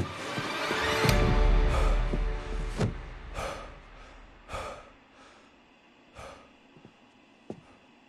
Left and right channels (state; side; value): identical; both; correlation 1.00